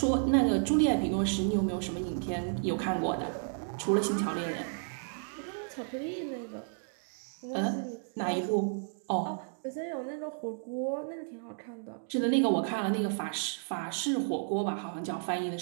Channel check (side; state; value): left; silent; digital silence